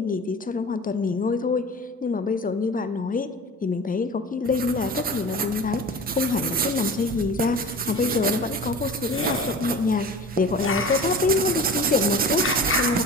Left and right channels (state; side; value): normal; both; correlation 0.37